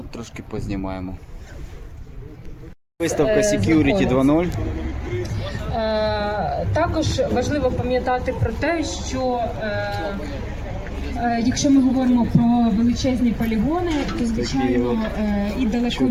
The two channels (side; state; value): both; identical; correlation 1.00